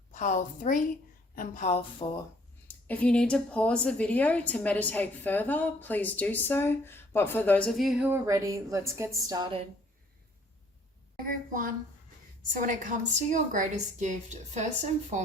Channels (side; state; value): both; normal; correlation 0.60